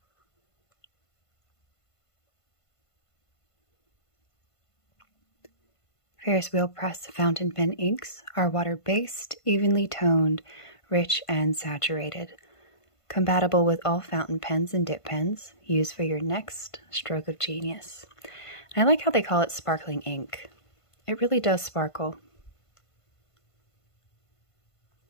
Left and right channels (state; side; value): late; right; 1.5 ms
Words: Ferris Wheel Press fountain pen inks are water-based, evenly toned, rich, and saturated. Compatible with all fountain pens and dip pens, used for your next stroke of genius. And I like how they call it sparkling ink. It really does sparkle.